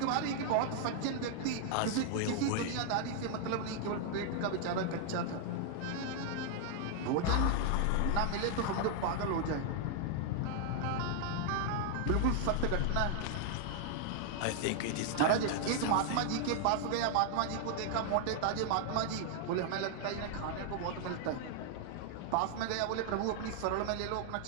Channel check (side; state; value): both; different; correlation 0.00